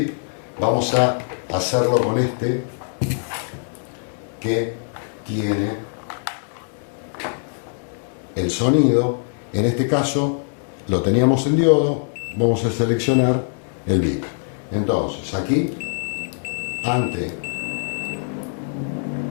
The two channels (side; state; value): right; silent; 63 dB below the other